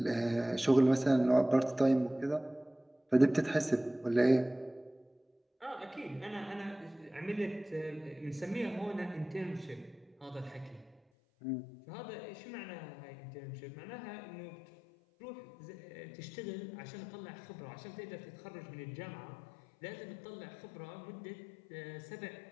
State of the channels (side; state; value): right; drops out; at 11.0 s